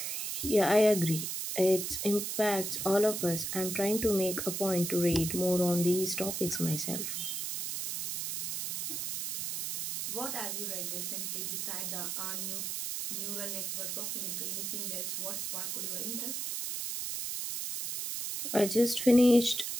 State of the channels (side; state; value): right; noise; hiss, 3 dB below the sound